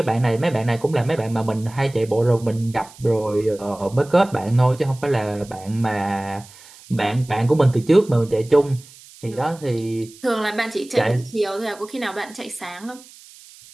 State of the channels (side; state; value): right; noise; hiss, 22 dB below the sound